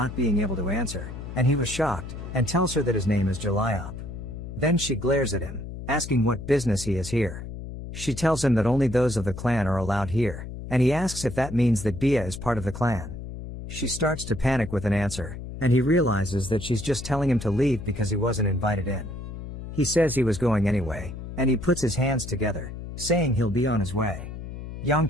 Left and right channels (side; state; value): left; noise; hum, 9 dB below the sound